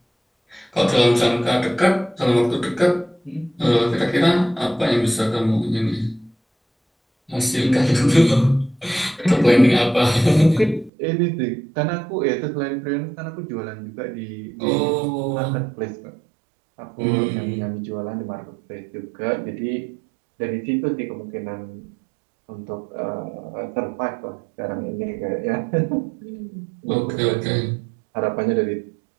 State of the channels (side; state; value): left; drops out; at 10.9 s